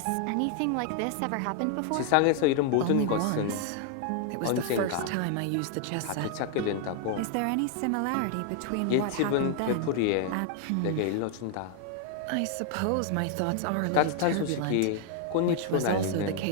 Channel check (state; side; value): different; both; correlation 0.00